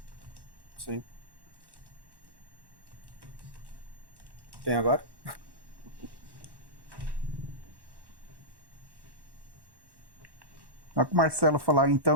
Sim. Quem agora? Na que o Marcelo falar,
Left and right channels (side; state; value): left; late; 1.1 ms